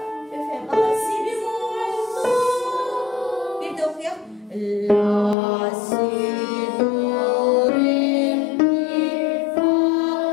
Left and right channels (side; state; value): right; drops out; at 5.4 s